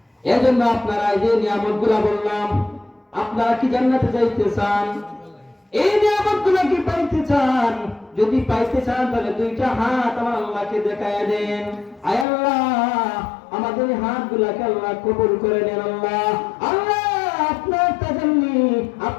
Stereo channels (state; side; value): drops out; right; at 12.2 s